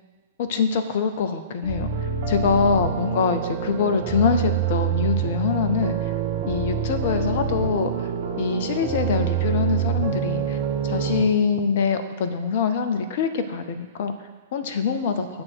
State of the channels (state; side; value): inverted; both; correlation -0.38